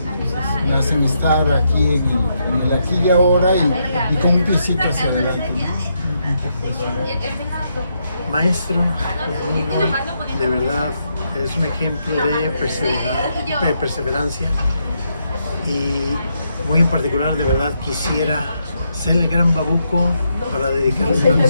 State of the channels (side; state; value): both; inverted; correlation -0.79